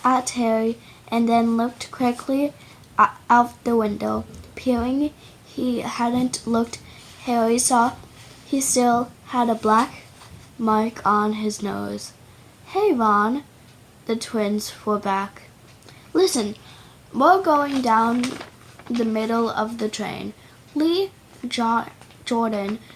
at Harry and then looked quickly out the window. peering he hadn't looked, Harry saw he still had a black mark on his nose. "Hey, Ron," the twins were back. "Listen, we're going down the middle of the train. Lee Jordan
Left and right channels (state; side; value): identical; both; correlation 1.00